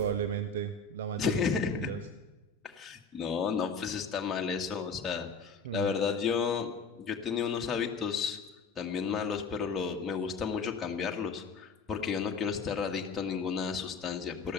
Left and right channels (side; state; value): right; quieter; 4.4 dB